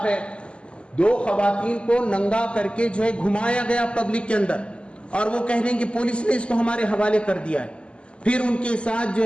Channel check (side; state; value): right; late; 0.053 ms